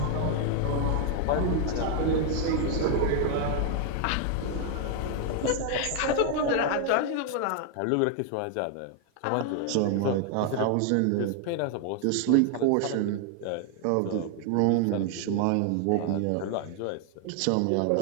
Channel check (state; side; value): different; both; correlation 0.00